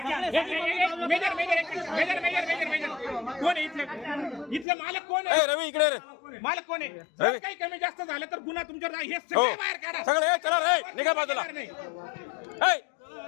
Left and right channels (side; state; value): right; drops out; at 4.7 s